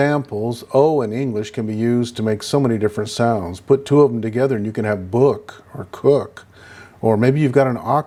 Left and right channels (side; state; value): both; identical; correlation 1.00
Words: O in English can be used to make so many different sounds. Put two of them together and you can have book or cook, or maybe you've got an